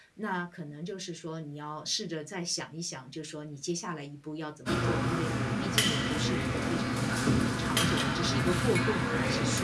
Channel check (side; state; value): both; identical; correlation 1.00